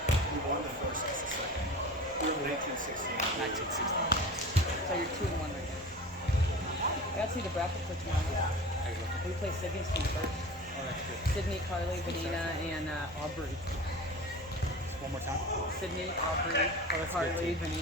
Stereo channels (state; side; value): normal; both; correlation 0.35